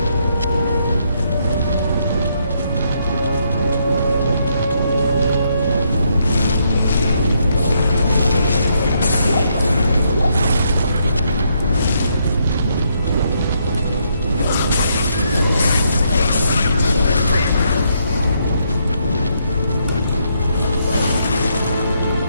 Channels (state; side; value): inverted; both; correlation -0.75